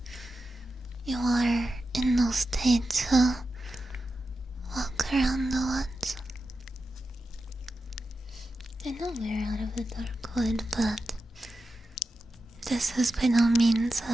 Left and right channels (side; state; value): both; normal; correlation 0.91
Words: You are in no state to walk around the woods. I know we're out of the dark wood, but this is by no means